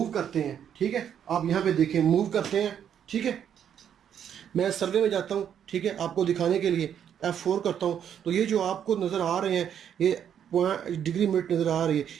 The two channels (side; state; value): left; quieter; 9.0 dB